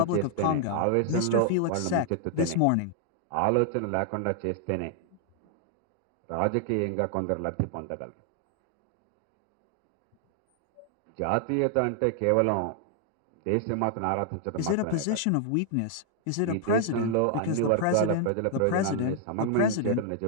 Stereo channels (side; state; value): both; different; correlation 0.00